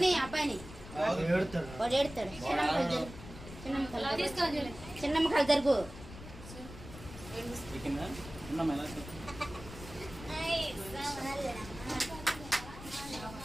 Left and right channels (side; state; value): left; noise; rumble, 14 dB below the sound